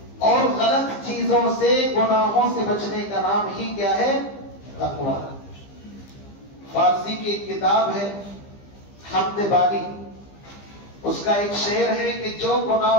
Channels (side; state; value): right; late; 15 ms